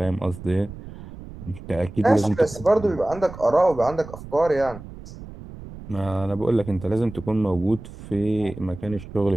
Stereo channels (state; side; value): noise; right; rumble, 14 dB below the sound